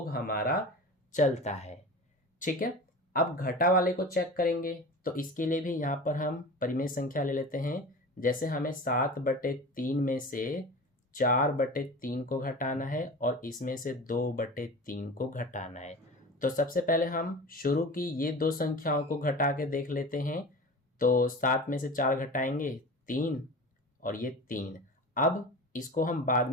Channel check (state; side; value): normal; both; correlation 0.34